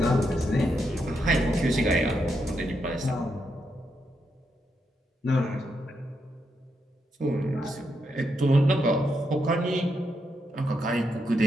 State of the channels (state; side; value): normal; both; correlation 0.82